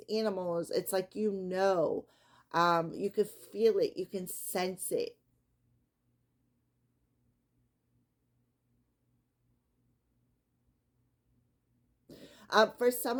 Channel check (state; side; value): identical; both; correlation 1.00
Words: animals, it's like you can feel it, you can sense it. For some